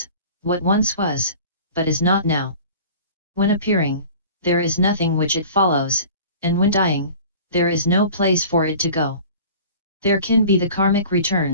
what once was, but is not now. When appearing, there is nothing which it follows, and when dying, there is no place for it to go. There can be the karmic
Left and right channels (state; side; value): inverted; both; correlation -0.43